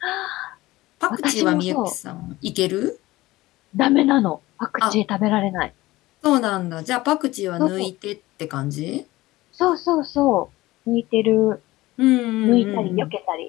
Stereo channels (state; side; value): quieter; right; 18.4 dB